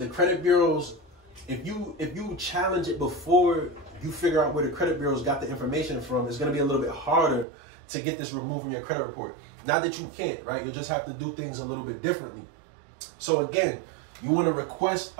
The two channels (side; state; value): left; drops out; at 7.5 s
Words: credit bureaus, if you challenge it before you figure out where the credit bureaus got the information from, it's going to be a little bit harder to get this removed from your credit report. Not that you can't, right? You just have to do things a little bit differently. So again, you want to request